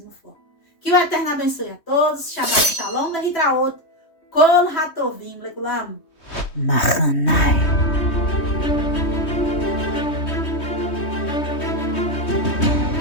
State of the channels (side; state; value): right; late; 3.2 ms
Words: forma. Que o Eterno abençoe a todos. Shabbat Shalom, Lehitraot, Kol Hatovim, Lekulam. Machanai.